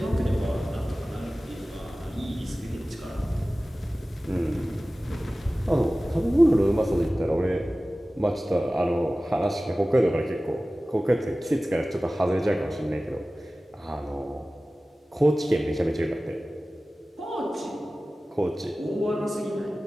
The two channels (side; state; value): both; normal; correlation 0.97